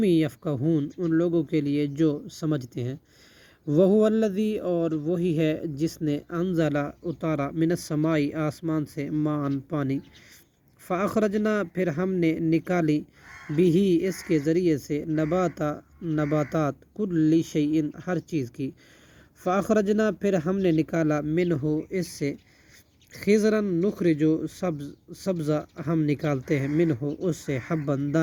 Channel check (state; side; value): identical; both; correlation 1.00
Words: یفقہون ان لوگوں کے لیے جو سمجھتے ہیں وہو الذی اور وہی ہے جس نے انزلہ اتارا من السماء آسمان سے ماء پانی فاخرجنا پھر ہم نے نکالی بھی اس کے ذریعے سے نباتات کل شیء ہر چیز کی فاخرجنا پھر ہم نے نکالا منہ اس سے خضرا نخرجو سبزہ ہم نکالتے ہیں منہ اس سے حبن